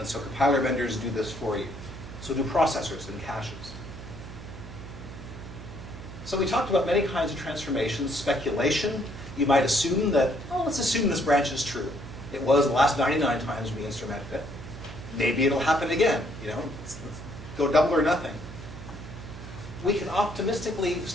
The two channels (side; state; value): right; noise; hum, 13 dB below the sound